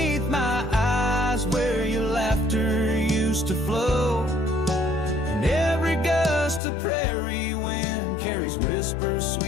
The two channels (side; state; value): right; drops out; at 6.6 s